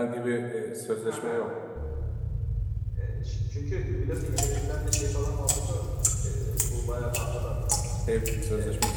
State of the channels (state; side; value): identical; both; correlation 1.00